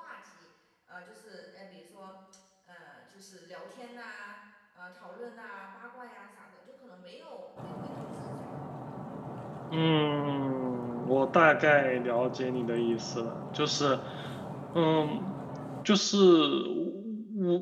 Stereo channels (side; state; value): both; identical; correlation 1.00